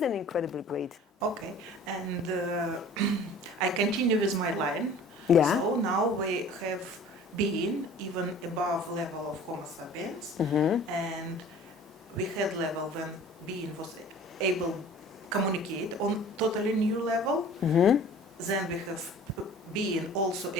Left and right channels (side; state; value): both; normal; correlation 0.46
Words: an incredible grade. Okay. And I continue with my line. Yeah. So now we have being even above level of Homo sapiens, and we had level when being was able communicate on totally new level. Then we have being also